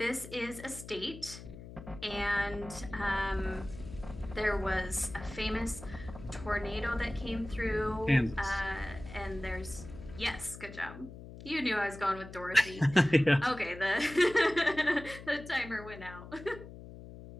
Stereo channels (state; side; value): noise; left; hum, 14 dB below the sound